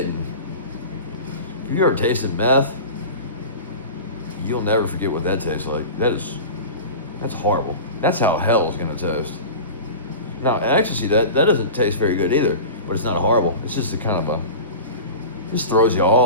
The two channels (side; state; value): both; inverted; correlation -0.32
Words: If you ever tasted meth, you'll never forget what that tastes like. That's horrible. That's how hell is going to taste. Now, ecstasy, that doesn't taste very good either, but it's not horrible. It's just a kind of just throws you